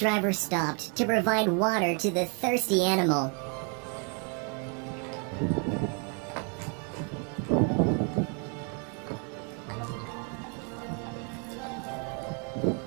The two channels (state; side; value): quieter; left; 37.6 dB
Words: stopped to provide water to the thirsty animal.